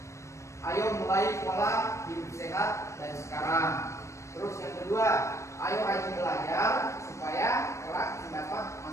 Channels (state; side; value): late; right; 0.14 ms